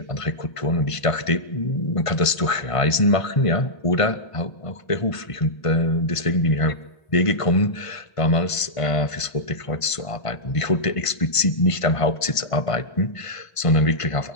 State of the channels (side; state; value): right; late; 1.5 ms